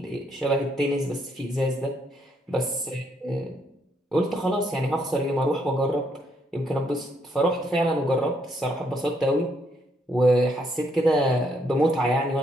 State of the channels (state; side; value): normal; both; correlation 0.73